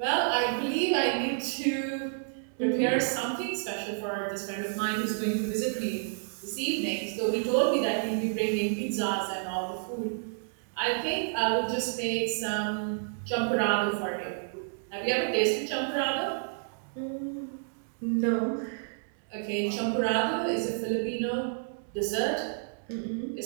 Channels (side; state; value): left; silent; digital silence